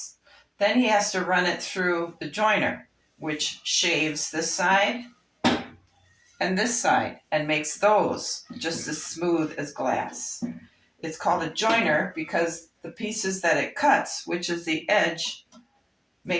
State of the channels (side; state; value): both; identical; correlation 1.00